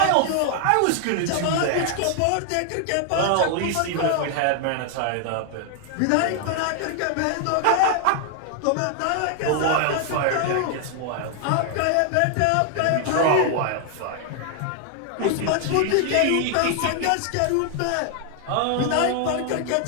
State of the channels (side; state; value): both; different; correlation 0.00